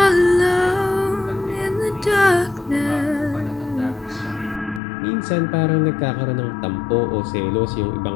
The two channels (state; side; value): drops out; right; at 4.8 s